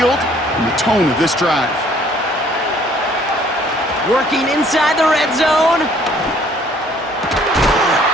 and the tone of this drive. Working inside the red zone.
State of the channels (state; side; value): normal; both; correlation 0.59